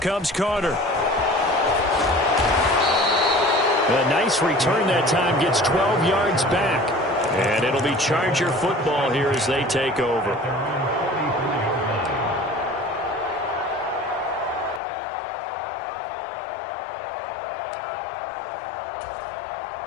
Carter. A nice return that time, gets 12 yards back. And it'll be Charger football here as they take over.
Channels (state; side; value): drops out; right; at 14.8 s